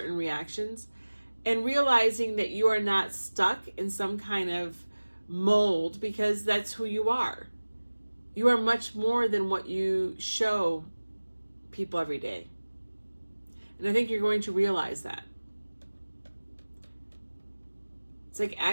reactions, and realizing that you are not stuck in some kind of mold, because that's who you are. You are much more than what you show people every day. And I think you're going to realize that. It's like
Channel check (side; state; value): both; inverted; correlation -1.00